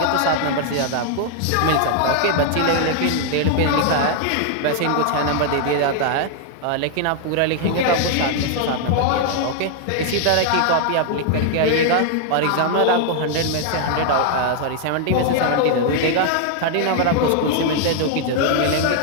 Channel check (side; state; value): both; different; correlation 0.00